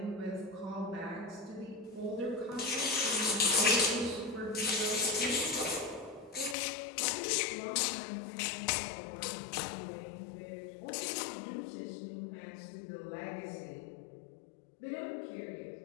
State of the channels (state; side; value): drops out; right; at 6.6 s